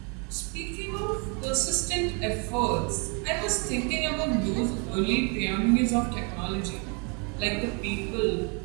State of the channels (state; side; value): quieter; left; 35.0 dB